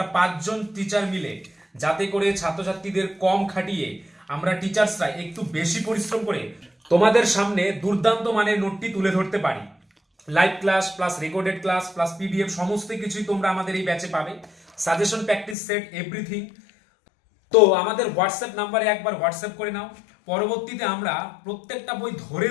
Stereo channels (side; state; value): right; drops out; at 15.6 s